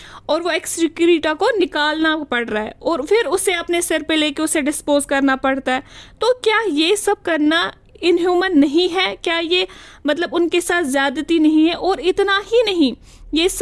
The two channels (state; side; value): identical; both; correlation 1.00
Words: और वो एक्सक्रीटा को निकालना पड़ रहा है और फिर उसे अपने सिर पे लेके उसे डिस्पोज करना पड़ता है। तो क्या ये सब करना इनह्यूमन नहीं है? क्या ये मतलब उनके साथ ज़्यादती नहीं है? और इतना ही नहीं, ये